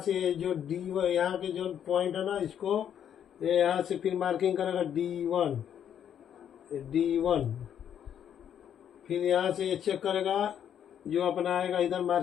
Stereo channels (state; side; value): quieter; right; 9.3 dB